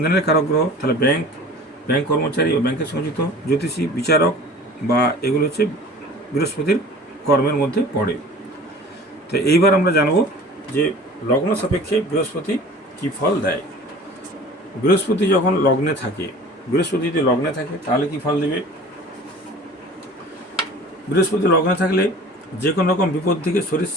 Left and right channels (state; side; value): normal; both; correlation 0.44